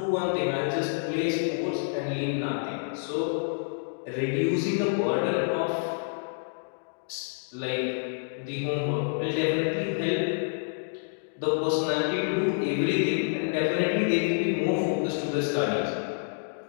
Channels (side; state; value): right; silent; digital silence